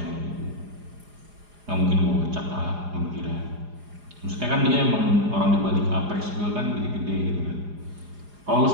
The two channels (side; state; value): left; late; 4.9 ms